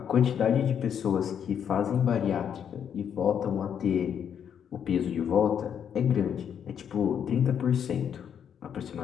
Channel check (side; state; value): right; quieter; 8.4 dB